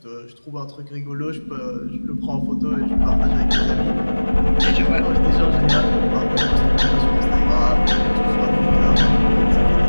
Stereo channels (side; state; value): both; inverted; correlation -1.00